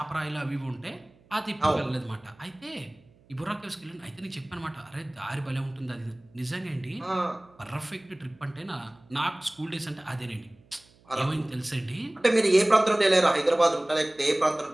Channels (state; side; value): noise; right; hum, 29 dB below the sound